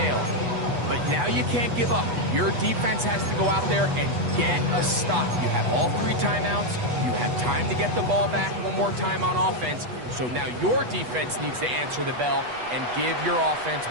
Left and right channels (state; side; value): late; left; 8.2 ms